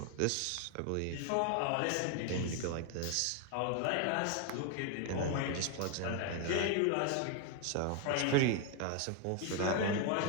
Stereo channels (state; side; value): different; both; correlation 0.01